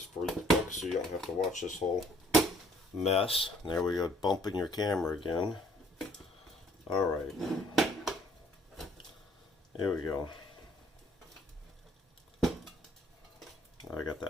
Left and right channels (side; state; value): both; normal; correlation 0.60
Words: for you folks so you don't have to watch this whole mess. There we go, bumping your camera again. Alright. Here we go. I got